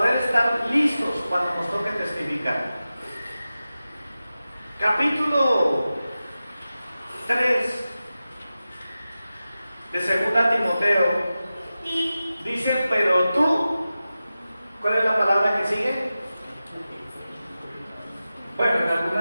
estar listos cuando nos toque testificar. Capítulo 3 de 2 Timoteo dice, pero tú, ¿cuál es la palabra que sigue? Bueno,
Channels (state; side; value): inverted; both; correlation -0.94